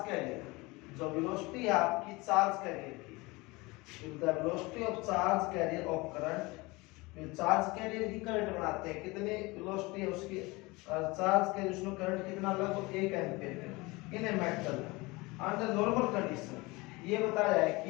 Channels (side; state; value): right; quieter; 23.6 dB